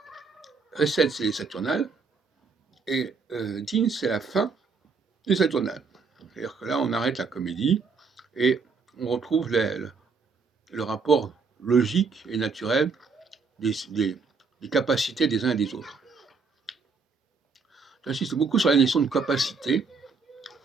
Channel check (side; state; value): left; quieter; 4.8 dB